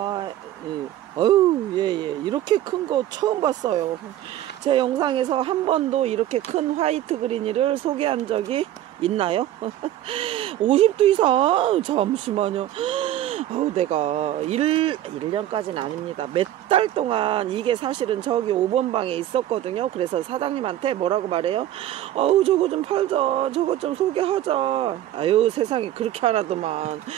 예. 이렇게 큰 거 처음 봤어요. 제 영상에서 한 번도 이렇게 큰 화이트 그린이를 소개한 적이 있나요? 50도 이상? 잠시만요. 내가 1년까지는 아닙니다. 몇 달 동안 이게 사실은 저기 5번 방에 있었거든요. 그래서 사장님한테 뭐라고 말해요? 저거 좀 팔자. 저거 좀 소개하자. 아유, 세상에 그렇게 하나더만.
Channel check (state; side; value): quieter; left; 12.9 dB